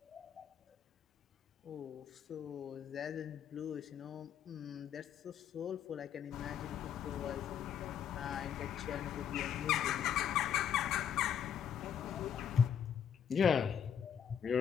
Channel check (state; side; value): quieter; right; 8.5 dB